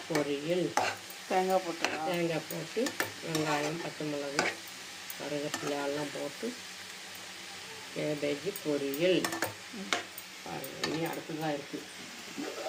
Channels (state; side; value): identical; both; correlation 1.00